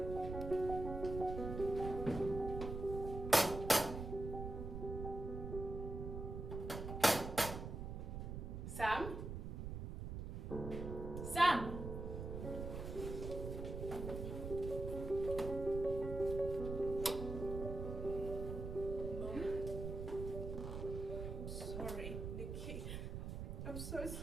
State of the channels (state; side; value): noise; right; rumble, 5 dB below the sound